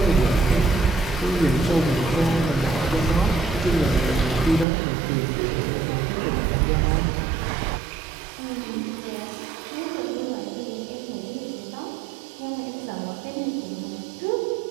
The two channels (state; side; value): drops out; left; at 4.7 s